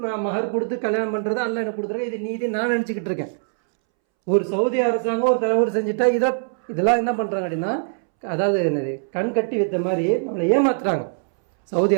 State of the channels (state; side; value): silent; left; 64 dB below the other